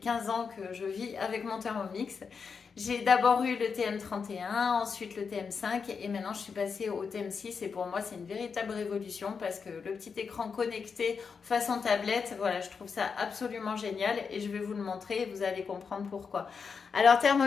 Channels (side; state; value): right; quieter; 5.7 dB